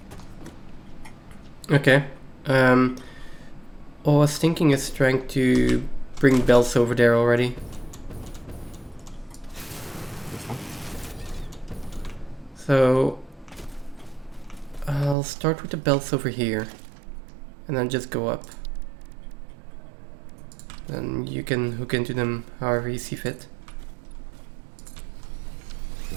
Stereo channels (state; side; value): drops out; left; at 15.2 s